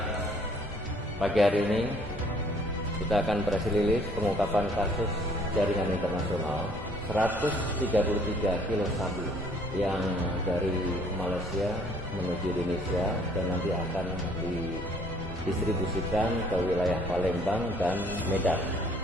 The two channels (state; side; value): normal; both; correlation 0.60